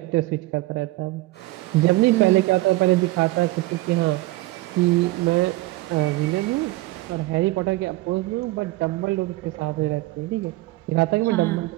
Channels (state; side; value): quieter; left; 19.2 dB